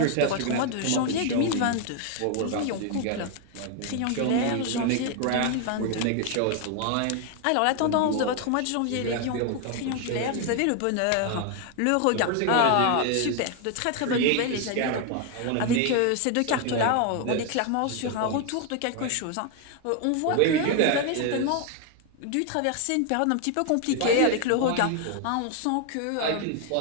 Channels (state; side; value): different; both; correlation 0.01